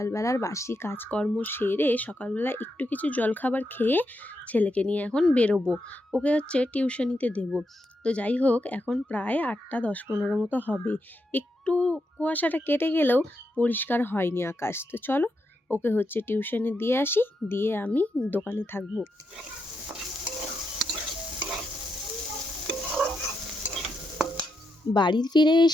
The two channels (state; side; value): normal; both; correlation 0.83